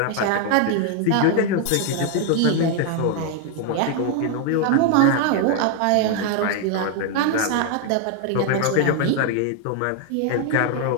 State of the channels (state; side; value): different; both; correlation 0.00